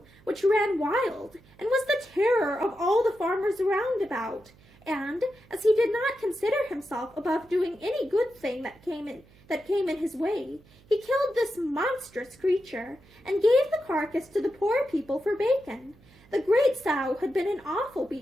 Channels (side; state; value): right; noise; hum, 27 dB below the sound